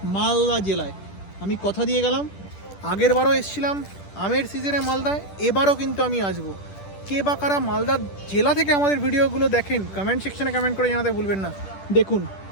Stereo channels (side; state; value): right; late; 10 ms